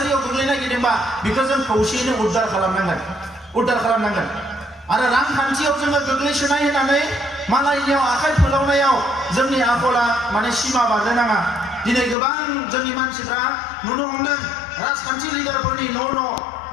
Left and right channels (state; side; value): drops out; right; at 12.2 s